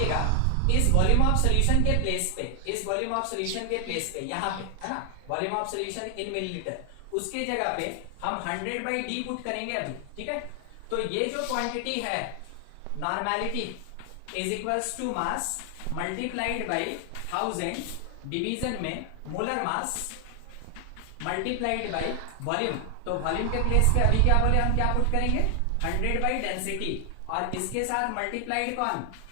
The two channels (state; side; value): different; both; correlation 0.00